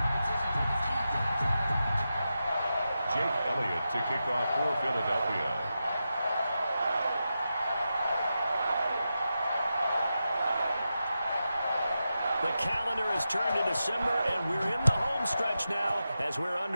To kick off for Philadelphia. The calendar has turned to December, and we're in the home stretch now as we're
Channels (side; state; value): both; inverted; correlation -0.90